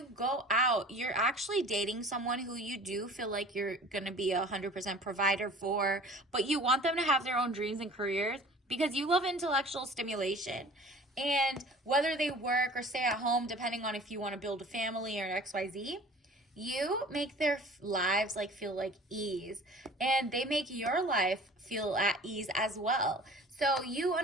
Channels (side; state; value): both; normal; correlation 0.45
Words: go out, you're actually dating someone who you do feel like you're going to be 100% provider for, but you want them to have their own dreams and careers because you love intellectual stimulation. And whether they work or stay at home, depending on if you want to build a family or XYZ, you make their lives like feel like ease, and they make your life feel at ease as well. So you